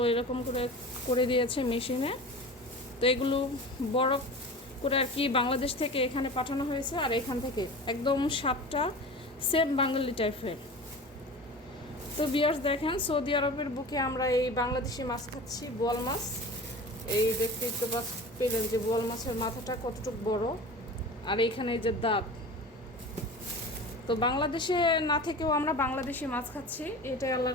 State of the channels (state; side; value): normal; both; correlation 0.35